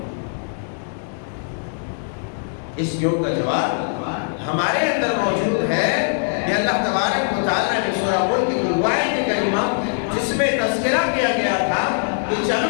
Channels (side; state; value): right; silent; digital silence